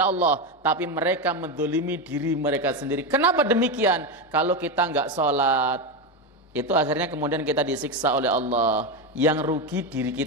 Allah, tapi mereka menzalimi diri mereka sendiri. Kenapa demikian? Kalau kita nggak sholat, itu akhirnya kemudian kita disiksa oleh Allah. Yang rugi diri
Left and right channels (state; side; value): normal; both; correlation 0.12